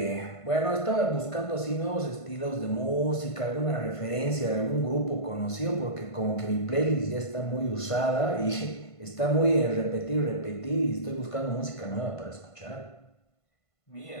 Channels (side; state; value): right; late; 1.5 ms